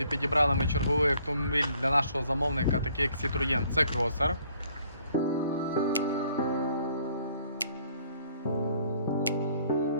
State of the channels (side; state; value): both; inverted; correlation -0.62